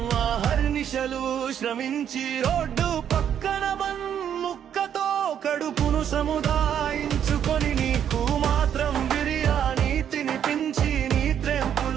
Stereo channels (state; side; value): quieter; left; 9.2 dB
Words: అహర్నిశలు శ్రమించి రోడ్డు పక్కన ముక్కతో కడుపును సముదాయించుకొని నీకు మాత్రం బిర్యానీ తినిపించి నీ